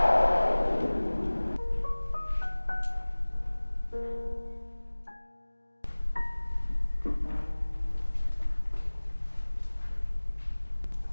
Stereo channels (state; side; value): inverted; both; correlation -1.00